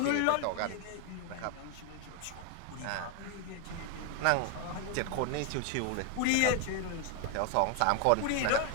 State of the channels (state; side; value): different; both; correlation 0.00